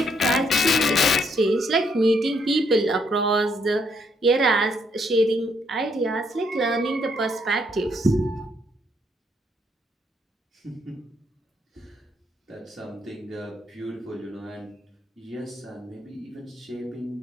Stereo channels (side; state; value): both; normal; correlation 0.72